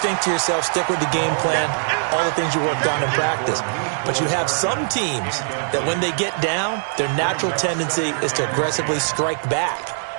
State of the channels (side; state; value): left; silent; 65 dB below the other